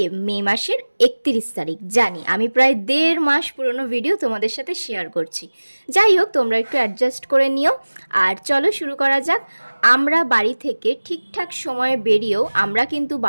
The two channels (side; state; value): both; inverted; correlation -1.00